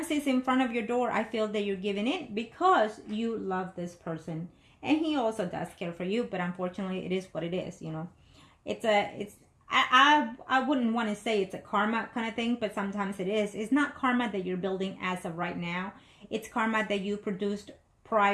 it's in front of your door, I feel that you're giving in because you love this person, and he also does care for you. But unfortunately, it is what it is. You know, I wouldn't want to say it's a karma kind of thing, but sometimes it is. It's not karma that you're building as of right now. It's karma that you produced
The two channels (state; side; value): identical; both; correlation 1.00